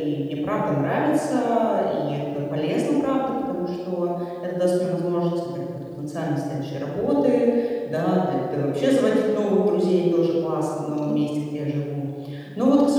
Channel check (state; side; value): identical; both; correlation 1.00